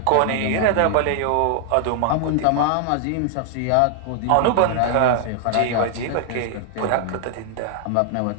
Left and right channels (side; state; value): both; different; correlation 0.00